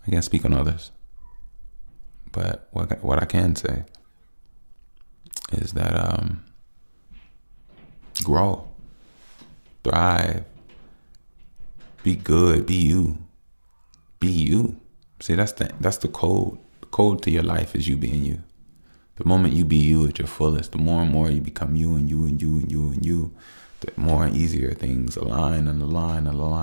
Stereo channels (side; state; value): both; inverted; correlation -1.00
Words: I can't speak on others. But what I can say is that grow, thrive, be good, be you. Be you. See, that's the code. The code to your life is you being you. The moment you be you at your fullest, the more and more you become you and you and you and you and you, the more and easier things align and align and